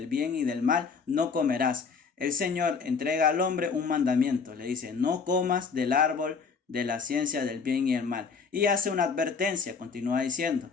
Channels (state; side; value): quieter; right; 5.4 dB